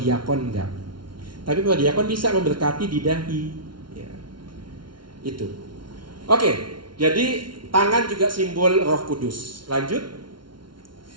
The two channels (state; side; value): late; left; 0.72 ms